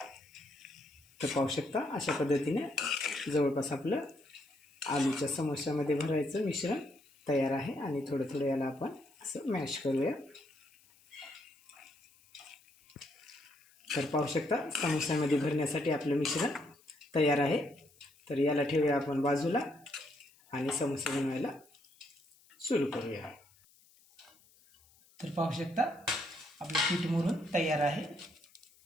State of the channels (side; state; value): left; noise; hiss, 29 dB below the sound